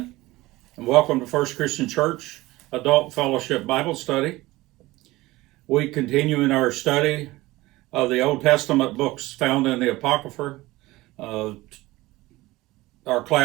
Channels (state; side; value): quieter; left; 19.1 dB